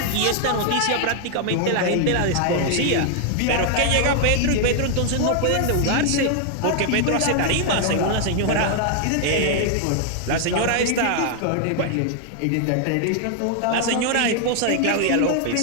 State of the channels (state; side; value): different; both; correlation 0.00